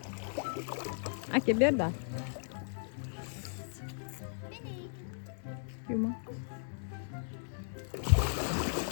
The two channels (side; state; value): right; silent; digital silence